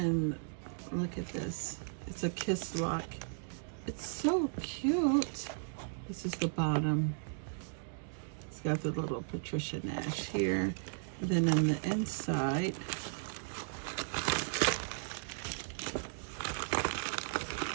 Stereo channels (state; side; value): silent; left; digital silence